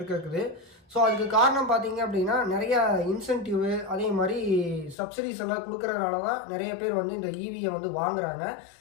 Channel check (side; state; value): right; drops out; at 5.0 s